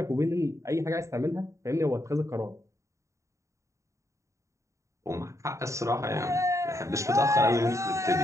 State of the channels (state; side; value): late; left; 0.15 ms